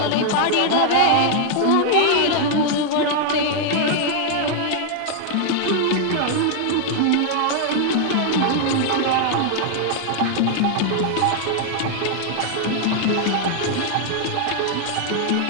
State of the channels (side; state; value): both; different; correlation 0.00